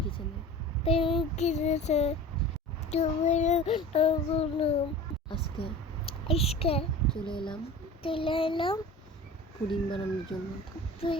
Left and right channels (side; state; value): both; normal; correlation 0.38